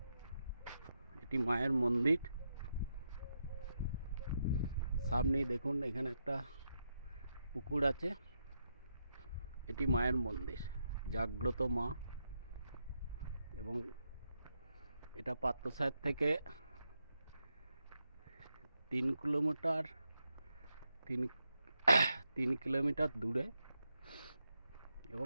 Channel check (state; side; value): inverted; both; correlation -0.83